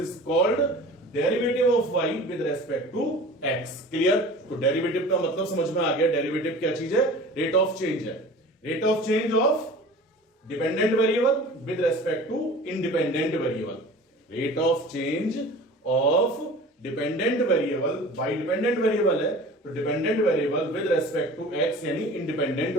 called derivative of y with respect to x. Clear. तो derivative का मतलब समझ में आ गया, डेरिवेटिव क्या चीज है, रेट ऑफ चेंज है। Rate of change of dependent variable with respect to independent variable. Rate of change of dependent variable, by dependent variable है तो dependent variable with respect to x यानी इंडिपेंडेंट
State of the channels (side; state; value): both; normal; correlation 0.41